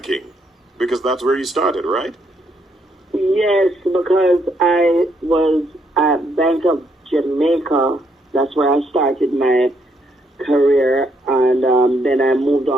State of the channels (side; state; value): both; normal; correlation 0.74